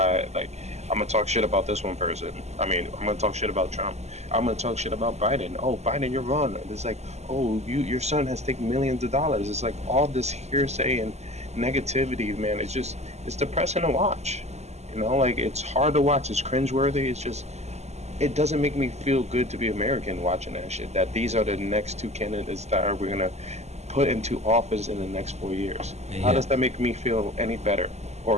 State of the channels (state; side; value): late; left; 0.32 ms